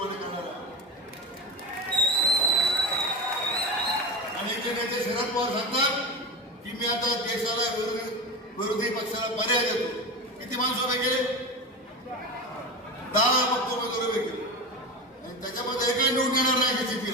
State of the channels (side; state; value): both; normal; correlation 0.23